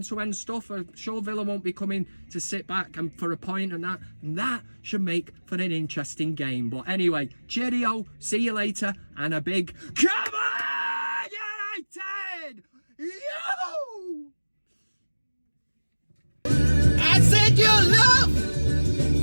stuff. I'm sure Villa won't be coming to sit back and for a point and that should make for an interesting game. But anyway, cheerio, see you later, and a big come on, United! Yo! I said your love,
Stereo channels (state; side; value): inverted; both; correlation -1.00